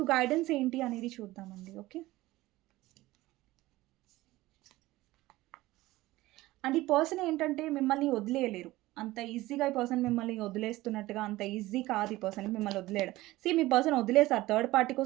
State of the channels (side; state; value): left; quieter; 18.0 dB